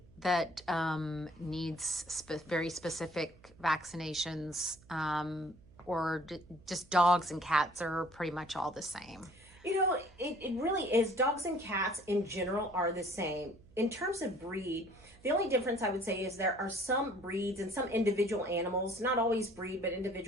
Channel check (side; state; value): right; noise; hum, 25 dB below the sound